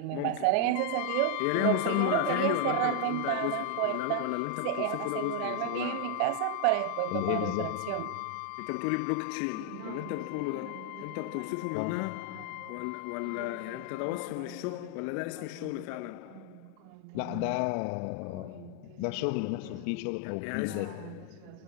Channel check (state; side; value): different; both; correlation 0.00